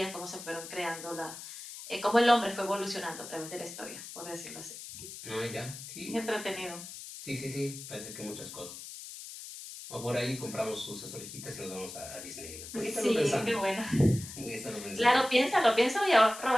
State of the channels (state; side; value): noise; left; hiss, 12 dB below the sound